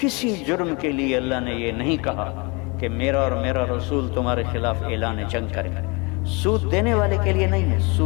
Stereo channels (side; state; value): right; quieter; 27.7 dB